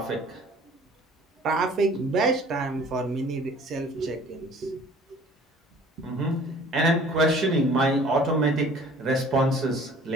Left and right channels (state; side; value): normal; both; correlation 0.51